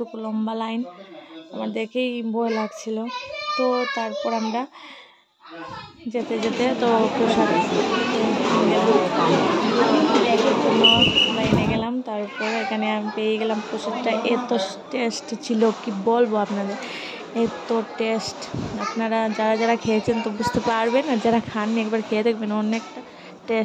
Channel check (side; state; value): both; identical; correlation 1.00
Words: লম্বা লাইন, আমার দেখেই ভয় লাগছিল। তো তারপর আমরা যেতে যেতে তো প্রসাদ খেতে গেলাম, এর জন্য লাইনে গেলাম। তারপর এখানে আমি পেয়ে গেলাম প্রসাদটা, এত টেস্ট ছিল কি বলবো আপনাদের, এত টেস্ট। আপনারা যারা যারা খেয়েছেন তো বুঝতে পারবেন, আর যারা খাননি একবার খেয়ে দেখবেন, অনেকটা